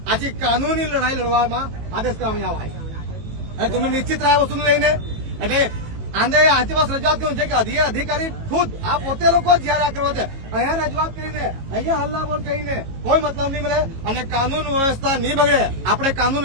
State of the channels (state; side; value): late; left; 18 ms